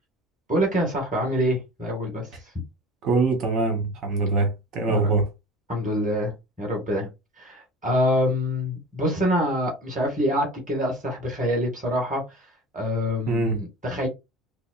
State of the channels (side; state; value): both; normal; correlation 0.38